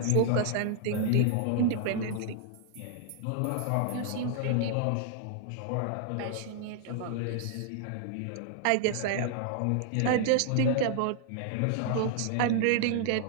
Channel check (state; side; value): different; both; correlation -0.01